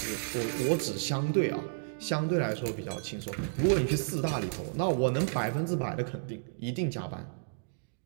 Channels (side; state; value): left; silent; digital silence